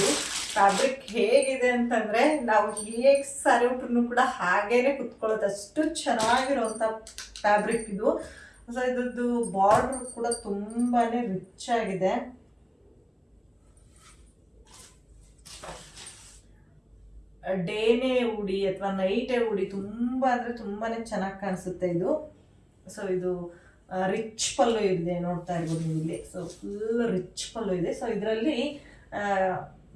ಫ್ಯಾಬ್ರಿಕ್ ಹೇಗಿದೆ ಅಂತಂದರೆ ನಾವು ಹೇಗೆ ಸಾರಿ ಉಟ್ರೂ ಕೂಡ ಹಾಗೇನೆ ಕುತ್ಕೊಳ್ಳೋದು, ಅಷ್ಟು ಚೆನ್ನಾಗಿರೋವಂಥ ಫ್ಯಾಬ್ರಿಕ್ ಇದು. ಸೊ ಇದ್ರದ್ದು ಬಾರ್ಡರ್ ಕೂಡ ತುಂಬಾ ರಿಚ್ ಆಗಿದೆ. ಡೇನೇ ಉಡಿ ಅಥವಾ ನೈಟೇ ಉಡಿ ತುಂಬ ಚೆನ್ನಾಗಿ ಕಾಣಿಸುತ್ತೆ ಇದು. ಸೊ ಇದು ರಿಚ್ ಪಲ್ಲು ಇದೆ, ನೋಡ್ತಾ ಇರ್ಬೋದು ನೀವು ಇಲ್ಲಿ. ಸೊ ಫುಲ್ ರಿಚ್ ಪಲ್ಲು ಇದೆ. ಸೊ ಇದರಲ್ಲಿ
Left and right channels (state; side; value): identical; both; correlation 1.00